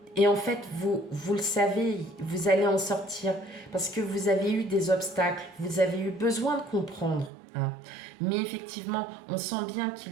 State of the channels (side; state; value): left; drops out; at 7.3 s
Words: Et en fait, vous le savez, vous allez en sortir parce que vous avez eu des obstacles, vous avez eu besoin de comprendre. Mais effectivement, on sent bien